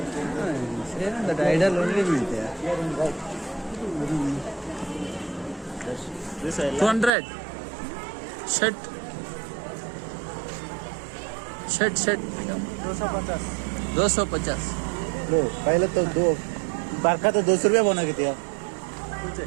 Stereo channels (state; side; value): drops out; left; at 7.1 s